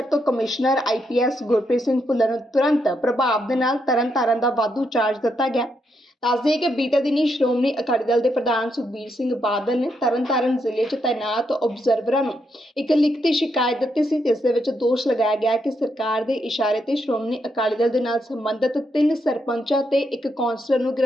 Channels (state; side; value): normal; both; correlation 0.79